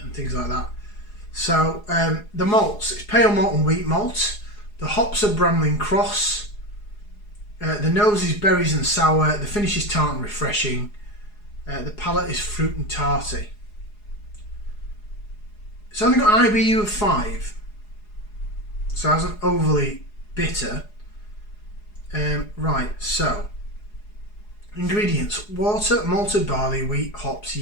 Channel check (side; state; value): right; late; 4.8 ms